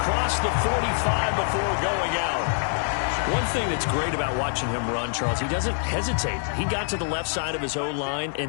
the 45 before going out. One thing that's great about watching him run, Charles, he doesn't hesitate. He got to the left side of his own line and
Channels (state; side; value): silent; right; digital silence